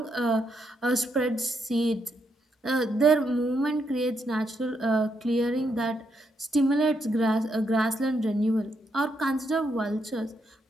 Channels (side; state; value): both; normal; correlation 0.78